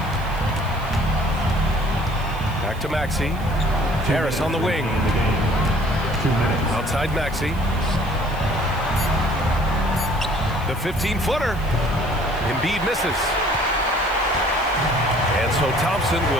Back to Maxey. Harris on the wing. Outside Maxey. The 15-footer. Embiid misses. And so Thompson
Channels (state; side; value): noise; right; hiss, 22 dB below the sound